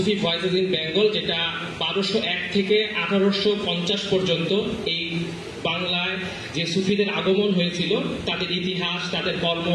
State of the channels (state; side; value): identical; both; correlation 1.00